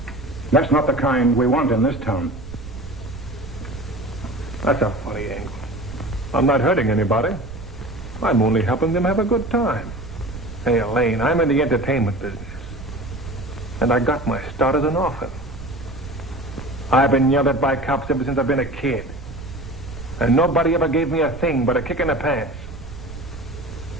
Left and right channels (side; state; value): right; noise; rumble, 12 dB below the sound